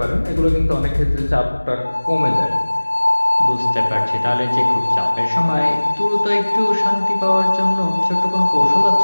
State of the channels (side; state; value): both; inverted; correlation -1.00